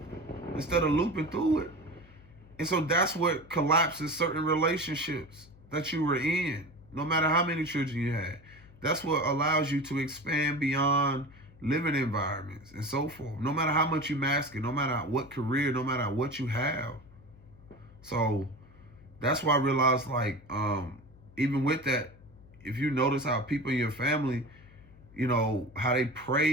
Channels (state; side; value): noise; left; hum, 23 dB below the sound